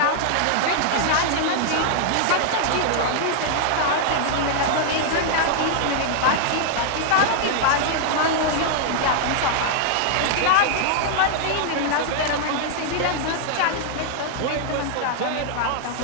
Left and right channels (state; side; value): different; both; correlation 0.00